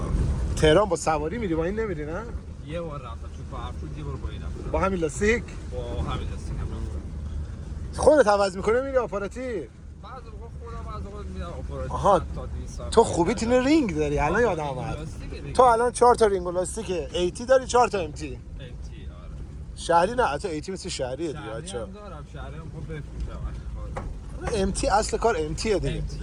تهران با سواری میری، با این نمیری نه؟ یه بار رفتم تو کارفرود، یه بار با این رفتم. با همین لاستیک با همین لاستیک هم رفتم. خودت عوض میکنه میری آپاراتی؟ بعضی موقع خودم از اون میرم آپاراتی. آها. 100 تا 200 تو خوبی تین رینگ داری الان یادم اومد. تو الان 4 تا رینگ و لاستیک ایتی داری، 4 تا MT. آره. شهری نه، حتی ایتی مثل شهریه دیگه شهری بچا. هم دارم، شهری هم خب بفروشم. MT اصل کار MT دیگه.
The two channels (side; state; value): both; identical; correlation 1.00